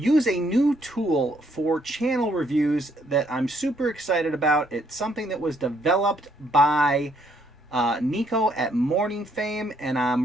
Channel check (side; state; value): both; normal; correlation 0.70